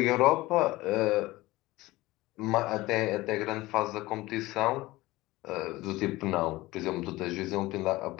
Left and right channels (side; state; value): right; quieter; 19.1 dB